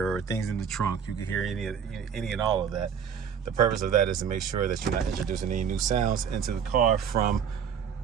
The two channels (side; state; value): left; quieter; 7.4 dB